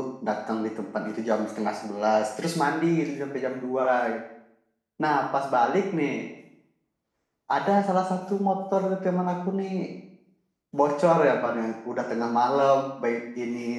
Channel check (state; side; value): identical; both; correlation 1.00